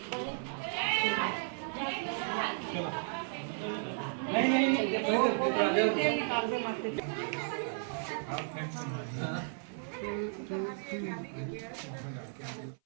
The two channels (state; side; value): silent; left; 55 dB below the other